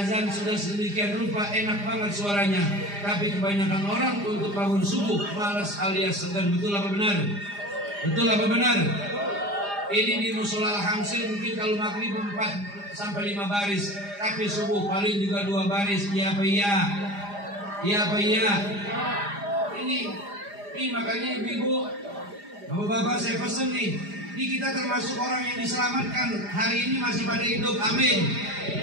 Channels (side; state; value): left; late; 4.9 ms